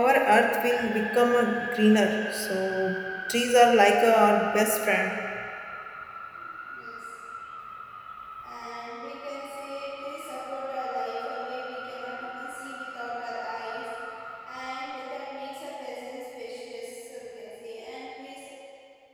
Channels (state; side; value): identical; both; correlation 1.00